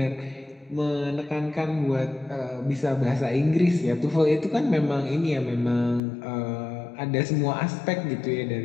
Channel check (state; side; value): drops out; right; at 6.0 s